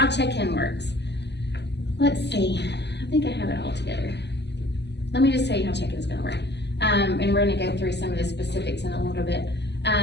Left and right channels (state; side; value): late; right; 0.50 ms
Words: check-in works. Let's see, I think I have it all together. Let me just tell you how check-in is gonna work. And we're gonna go through some of the specifics in a little bit.